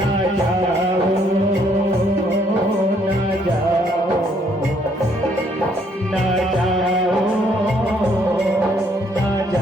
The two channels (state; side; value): normal; both; correlation 0.67